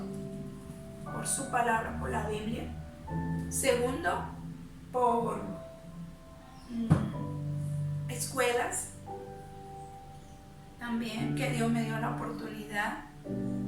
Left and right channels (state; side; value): identical; both; correlation 1.00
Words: Por su palabra, por la Biblia. Segundo, por escuelas también, que Dios me dio la oportunidad.